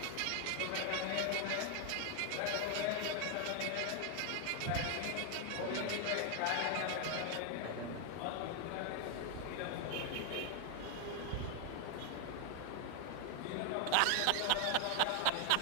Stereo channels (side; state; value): both; different; correlation 0.00